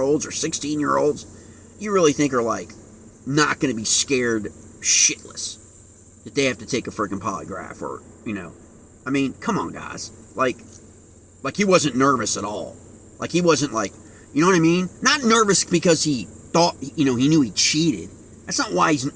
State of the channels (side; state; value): both; identical; correlation 1.00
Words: or 16-year-olds you really think are, like, not going to be scared shitless that they have to take a freaking polygraph or, I mean, come on, guys. Like he wasn't nervous at all. Like he wasn't like, you know what I mean? Not nervous because he thought, he knew he cheated. That's not why